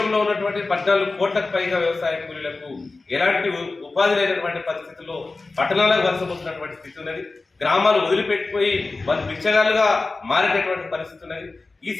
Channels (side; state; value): right; quieter; 3.6 dB